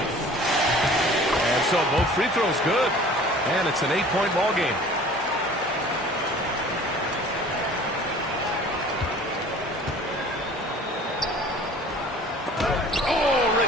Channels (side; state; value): both; normal; correlation 0.47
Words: And so both free throws good, and it's an 8-point ball game. Oh,